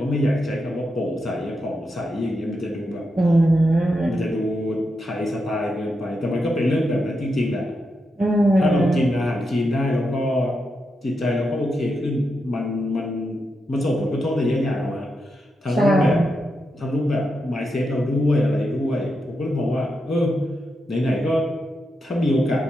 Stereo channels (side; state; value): both; normal; correlation 0.85